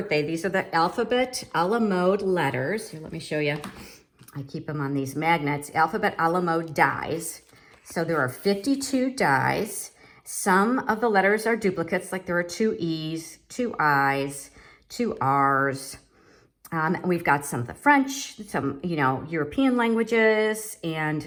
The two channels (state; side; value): identical; both; correlation 1.00